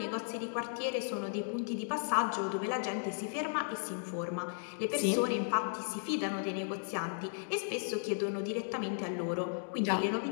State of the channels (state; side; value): silent; right; digital silence